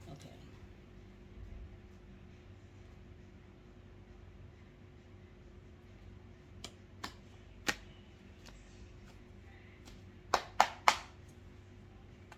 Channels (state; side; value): identical; both; correlation 1.00